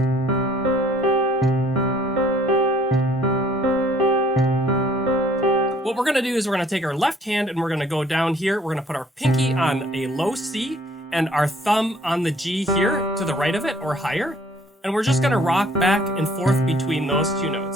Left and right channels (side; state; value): both; normal; correlation 0.58